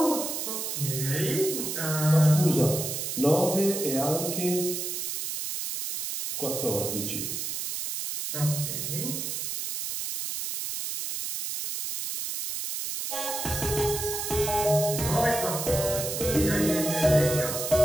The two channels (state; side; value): noise; right; hiss, 4 dB below the sound